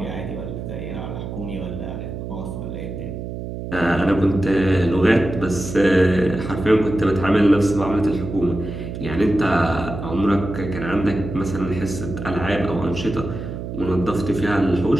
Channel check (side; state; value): right; noise; hum, 7 dB below the sound